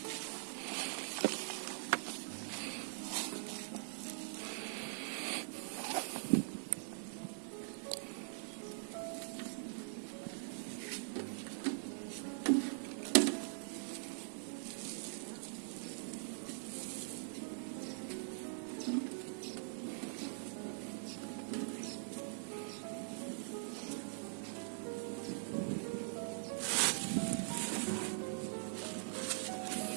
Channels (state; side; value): silent; left; digital silence